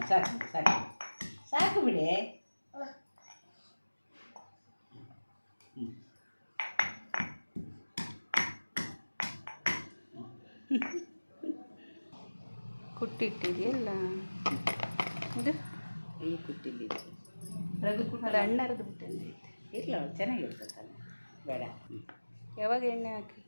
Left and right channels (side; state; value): both; inverted; correlation -1.00